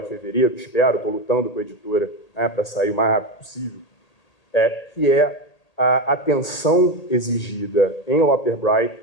fevereiro, espero, estou lutando com a editora para sair o mais rápido possível, que é a atenção exigida em Loper Bright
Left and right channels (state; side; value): late; right; 1.8 ms